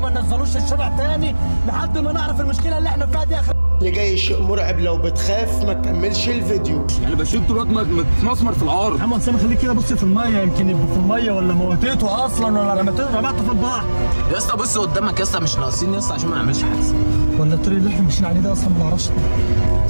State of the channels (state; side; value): inverted; both; correlation -1.00